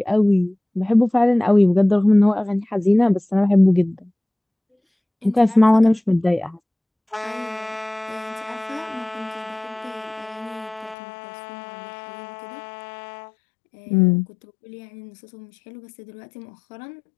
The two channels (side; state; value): right; drops out; at 11.0 s